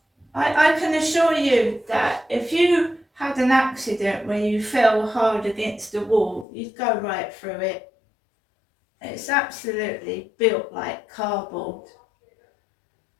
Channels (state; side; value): drops out; right; at 6.5 s